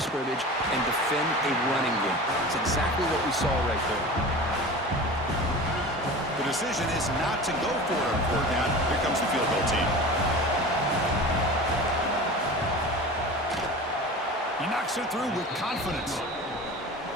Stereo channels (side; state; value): both; normal; correlation 0.35